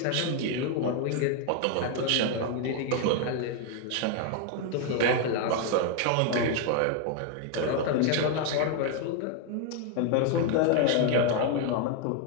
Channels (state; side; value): different; both; correlation 0.00